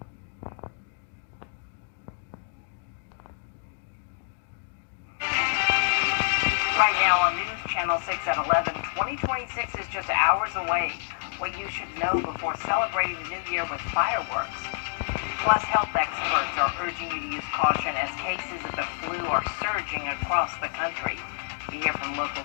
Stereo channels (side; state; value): right; silent; digital silence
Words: Right now on News Channel 6 at 11, 2026 is just hours away. What you should know before celebrating the new year with fireworks. Plus, health experts are urging you to use caution as cases of the flu are surging across the country. We hear from local